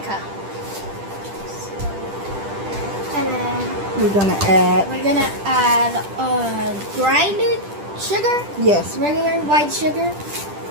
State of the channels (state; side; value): late; left; 10 ms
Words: cup. And then We're going to add... we're gonna add grinded sugar, Yes. regular white sugar,